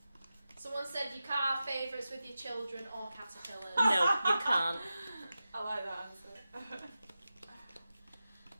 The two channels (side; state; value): both; inverted; correlation -0.93